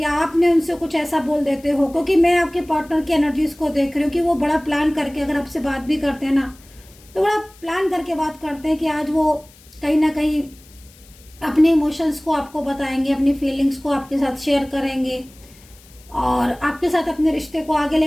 आपने उनसे कुछ ऐसा बोल देते हो। क्योंकि मैं आपके पार्टनर की एनर्जीज को देख रही हूँ कि वो बड़ा प्लान करके अगर आपसे बात भी करते हैं ना, तो बड़ा प्लान करके बात करते हैं कि आज वो कहीं ना कहीं अपने इमोशंस को आपको बताएंगे, अपनी फीलिंग्स को आपके साथ शेयर करेंगे और आपके साथ अपने रिश्ते को आगे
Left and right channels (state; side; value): noise; left; hiss, 25 dB below the sound